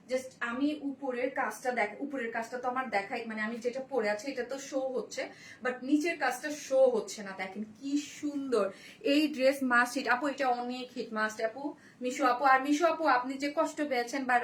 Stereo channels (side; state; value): both; identical; correlation 1.00